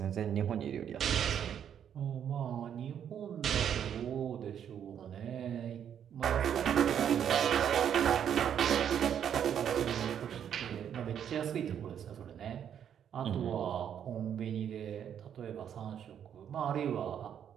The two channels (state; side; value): quieter; left; 9.0 dB